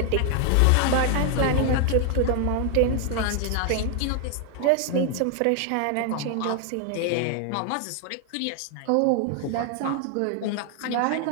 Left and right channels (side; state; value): both; different; correlation 0.00